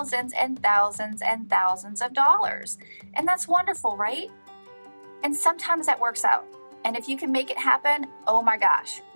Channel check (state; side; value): inverted; both; correlation -1.00